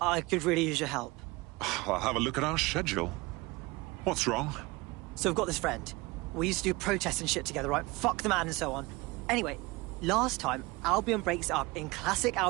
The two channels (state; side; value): quieter; left; 23.1 dB